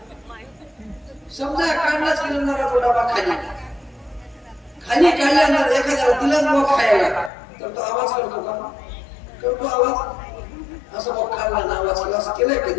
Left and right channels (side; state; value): right; drops out; at 7.3 s